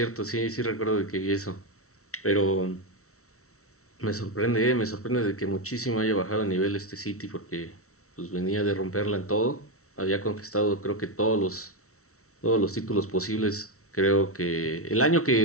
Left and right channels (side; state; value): right; late; 0.64 ms